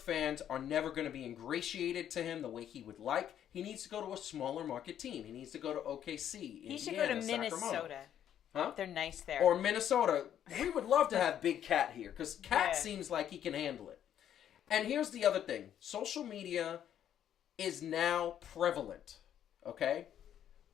are never going to be ingratiated to him the way he would like. He needs to go to a smaller market team. He needs to go to OKC, He should go to Sacramento. Minnesota. Huh? They're nice there. Or Minnesota. We would love to have Big Cat here because Cat seems like he can handle it. And here's the other thing. Social media is now prevalent, okay?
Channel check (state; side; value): quieter; right; 10.2 dB